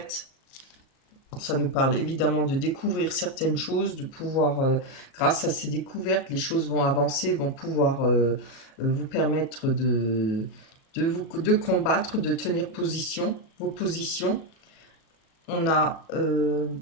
ça nous parle évidemment de découvrir certaines choses, de pouvoir, grâce à ces découvertes, les choses vont avancer, vont pouvoir vous permettre de combattre, de tenir position, vos positions. On a,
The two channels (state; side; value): late; right; 37 ms